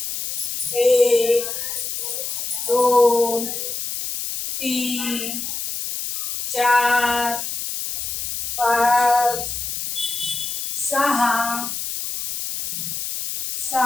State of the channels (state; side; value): noise; left; hiss, 4 dB below the sound